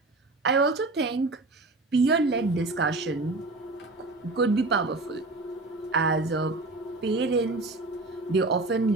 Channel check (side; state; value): left; quieter; 3.2 dB